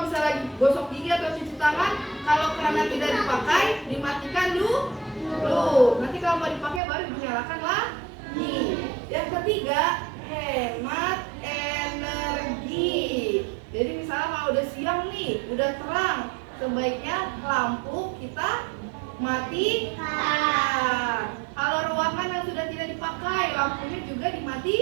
misalnya lagi gosok gigi atau cuci tangan, kalau kerannya tidak dipakai, dimatikan dulu. Nanti kalau mau dipakai baru dinyalakan lagi. Yang ketiga, hemat energi. Jadi misalnya kalau udah siang nih, udah terang, sebaiknya lampu kita matikan. Kalau ruangan yang sudah tidak dipakai, lampunya juga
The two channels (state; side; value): drops out; left; at 6.8 s